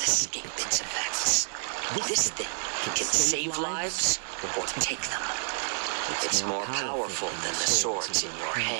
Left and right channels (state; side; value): silent; left; 59 dB below the other